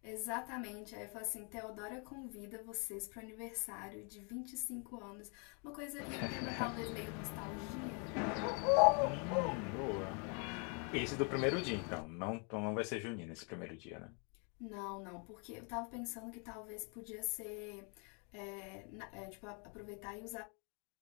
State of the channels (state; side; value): quieter; right; 36.6 dB